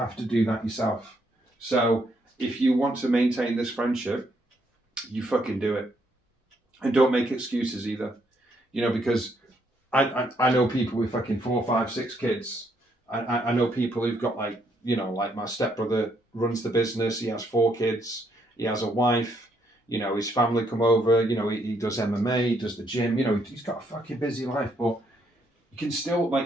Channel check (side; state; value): both; normal; correlation 0.73